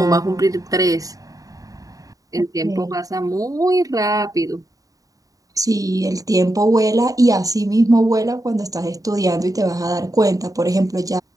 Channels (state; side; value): late; left; 0.17 ms